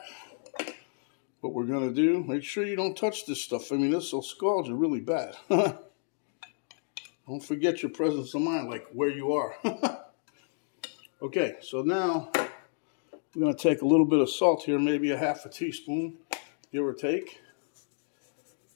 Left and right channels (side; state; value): right; silent; digital silence